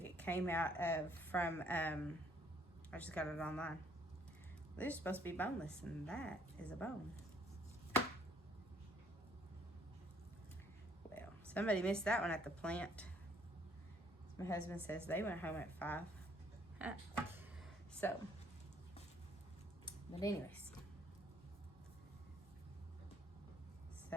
It came out from I just got it online. They're supposed to be boneless, and that is a bone. Well, somebody missed that one at the plant. My husband says they went home at 5. Huh. So, but anyways,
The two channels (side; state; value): both; normal; correlation 0.64